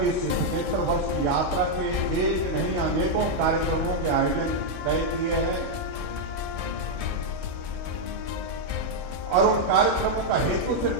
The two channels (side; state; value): left; late; 1.7 ms